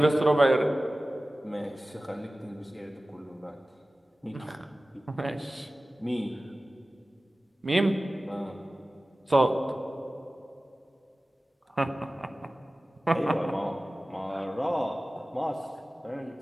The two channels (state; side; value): normal; both; correlation 0.97